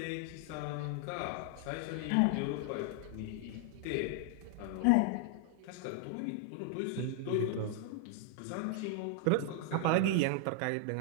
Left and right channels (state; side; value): different; both; correlation 0.00